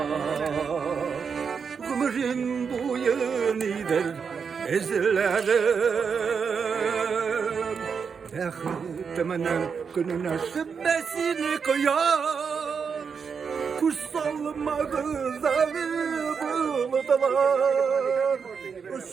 ömrün boyunidir ezlerim Bektiminin gününe şüphesini koyar Kutsal mağazalı buldular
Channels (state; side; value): quieter; left; 6.1 dB